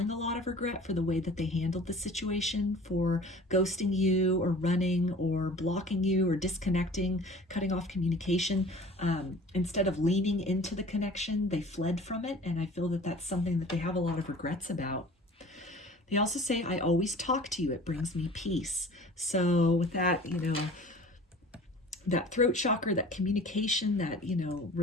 a lot of regret for the way that they handled the situation, for ghosting you or running or blocking you or disconnecting, cutting off communication. Instead of leaning into the connection, they fled from it. And I feel that that's something that they have a lot of regrets about. They also say, I always talk to you. It brings me peace. So with that, you know, that throat chakra, that communication, that, you know,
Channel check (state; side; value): normal; both; correlation 0.45